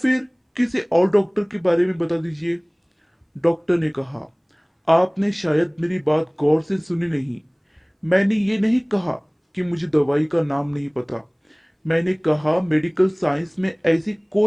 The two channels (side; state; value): both; identical; correlation 1.00